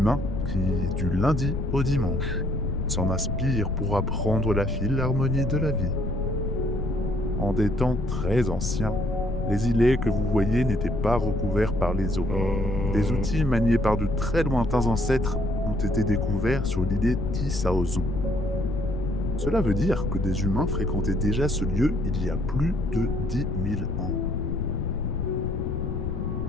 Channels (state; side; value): noise; left; rumble, 3 dB below the sound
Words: qui, du lundi au dimanche, s'en inspire pour apprendre la philharmonie de la vie. En des temps très anciens, les îlets que vous voyez n'étaient pas recouverts par les eaux. Des outils maniés par de très lointains ancêtres ont été découverts sur l'îlet Tissaozon. Cela veut dire que des humains fréquentaient déjà ce lieu il y a plus de 10 000 ans.